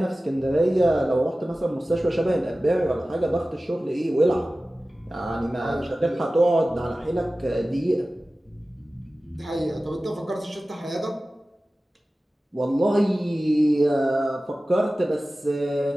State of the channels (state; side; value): normal; both; correlation 0.96